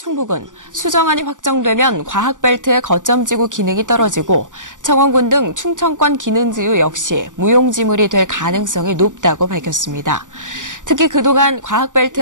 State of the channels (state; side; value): late; left; 0.87 ms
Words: 수정안이 확정되면 과학벨트의 거점지구 기능이 떨어지고 청원군 등 충청권 기능지구 역시 무용지물이 될 가능성이 높다고 밝혔습니다. 특히 그동안